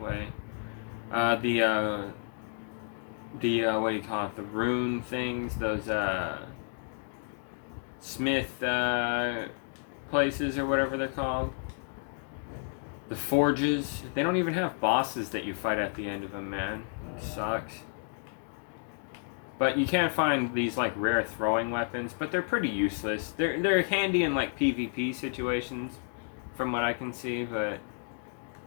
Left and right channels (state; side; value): silent; right; 57 dB below the other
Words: The what do you call it? The rune things, those smith places or whatever they're called. The forges. They don't even have bosses that you fight at the end of them, man. It sucks. But you can't find these like rare throwing weapons, but they're pretty useless. They're handy in like PvP situations, from what I can see, but